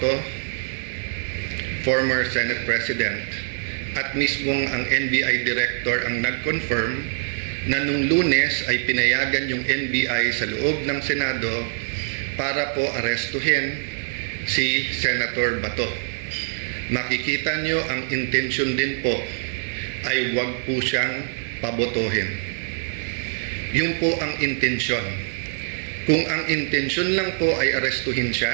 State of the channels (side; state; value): left; silent; digital silence